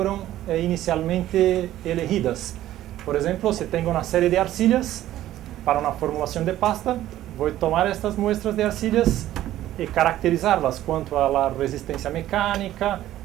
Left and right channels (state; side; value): quieter; left; 13.6 dB